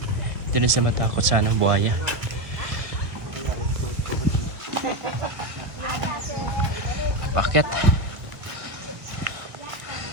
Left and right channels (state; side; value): late; left; 1.2 ms